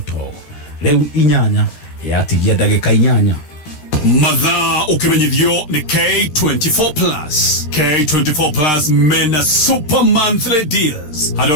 riu inyanya yatigia ndagika inyanya. Mathaa ukimenyithio ni K24 Plus. K24 Plus mena super monthly deals.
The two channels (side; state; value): right; late; 13 ms